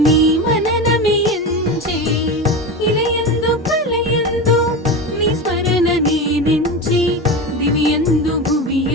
నీ మననమే ఎంచి. ఇలయందు కలయందు నీ స్మరణ నేనెంచి, దివ్యందు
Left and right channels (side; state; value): both; normal; correlation 0.23